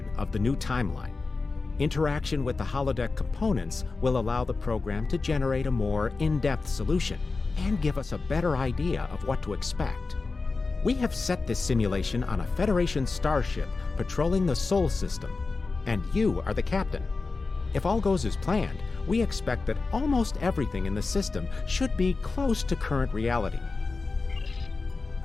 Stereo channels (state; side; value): quieter; right; 4.0 dB